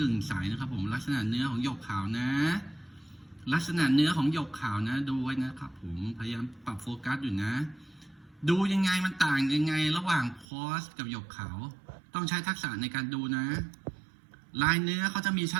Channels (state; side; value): drops out; left; at 10.5 s